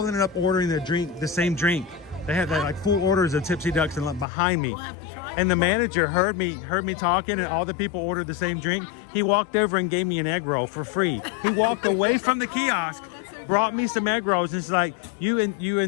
ended up ordering the same drink. They had like full orders of Tipsy Ducks and behind me. We'll have to try and the manager heard me talking, and all the people ordered the same drink. He walked over and gave me an egg roll for free. He walked away from the kiosk, brought me some egg rolls, and it's like, you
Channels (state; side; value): drops out; right; at 4.2 s